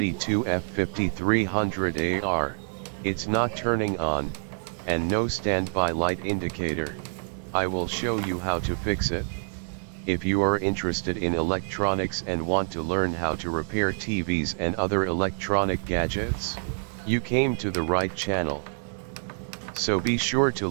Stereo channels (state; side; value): silent; left; digital silence